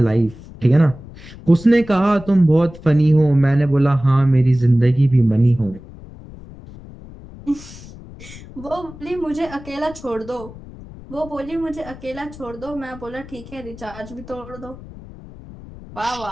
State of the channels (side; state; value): left; noise; rumble, 17 dB below the sound